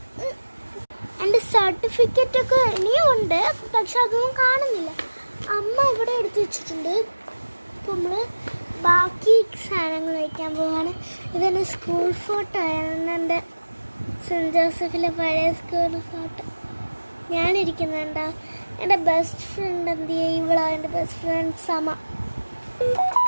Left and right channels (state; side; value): inverted; both; correlation -1.00